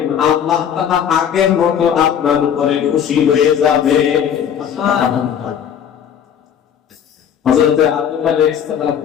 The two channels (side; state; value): right; quieter; 8.6 dB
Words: আল্লাহ তাআলা আগের মতো আপনার উপরে খুশি হয়ে যাবে। সুবহানাল্লাহ। হযরত আদম আলাইহিস সালাম